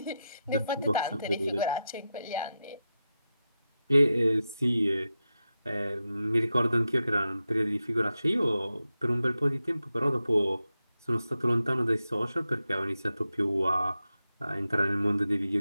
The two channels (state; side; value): inverted; both; correlation -0.89